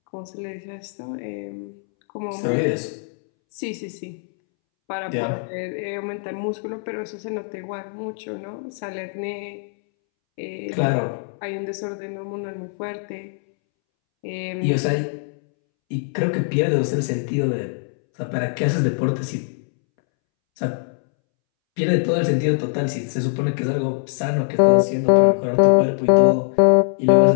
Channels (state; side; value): silent; right; 64 dB below the other